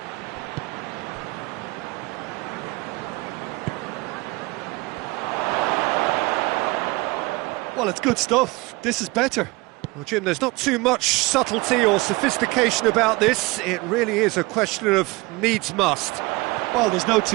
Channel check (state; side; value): quieter; left; 23.3 dB